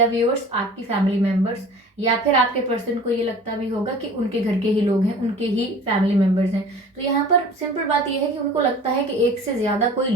व्यूअर्स आपकी फैमिली मेंबर्स, या फिर आपके पर्सन को ये लगता भी होगा कि उनके घर के ही लोग हैं, उनके ही फैमिली मेंबर्स हैं। तो यहाँ पर सिंपल बात यह है कि उनको लगता है कि एक से ज़्यादा कोई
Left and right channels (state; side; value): normal; both; correlation 0.43